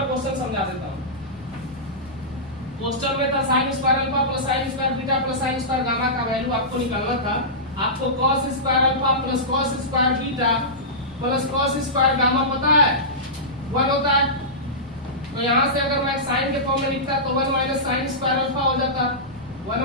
क्वेश्चन समझा देता हूं। क्वेश्चन में था sine square alpha plus sine square beta plus sine square gamma का वैल्यू आपको निकालना था। आपको cos square alpha plus cos square beta plus cos square gamma पता है 1 होता है, तो यहां से अगर मैं साइन के फॉर्म में लिखता तो 1 माइनस साइन स्क्वायर अल्फा हो जाता, 1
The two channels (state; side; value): noise; left; rumble, 24 dB below the sound